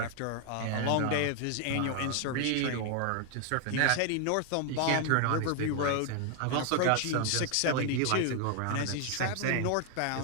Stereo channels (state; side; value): different; both; correlation 0.00